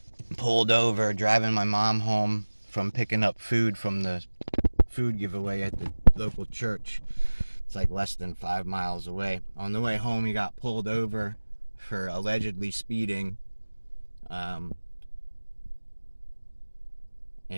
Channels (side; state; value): both; inverted; correlation -1.00